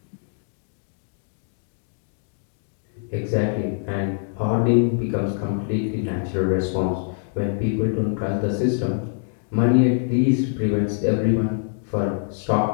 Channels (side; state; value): right; silent; digital silence